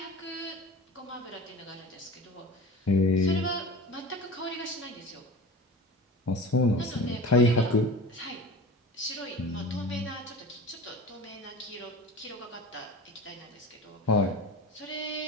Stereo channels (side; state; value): both; normal; correlation 0.35